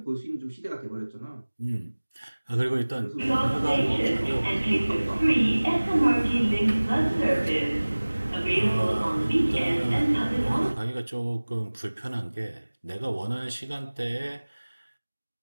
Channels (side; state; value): both; inverted; correlation -1.00